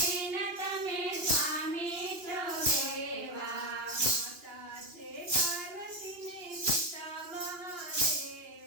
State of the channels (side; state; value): left; late; 2.9 ms